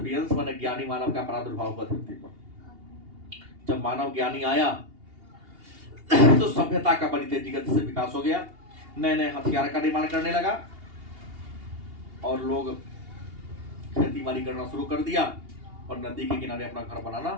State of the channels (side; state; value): left; late; 2.8 ms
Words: माने ज्ञानी मानव का प्रादुर्भाव हुआ धरती पर। जब मानव ज्ञानी आया तो सभ्यता का बड़ी तेजी गति से विकास हो गया। नए नए हथियार का निर्माण करने लगा, और लोग खेती बाड़ी करना शुरू कर दिया, और नदी के किनारे अपना घर बनाना